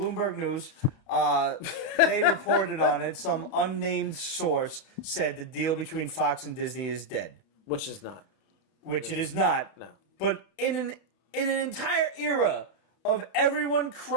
Bloomberg News. They reported on it. Some unnamed source said the deal between Fox and Disney is dead. Which is not. Which it is not. No. But in an entire era of everyone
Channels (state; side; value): late; right; 31 ms